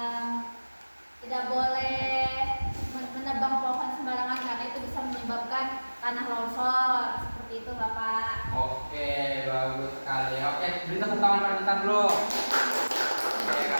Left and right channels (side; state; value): both; inverted; correlation -1.00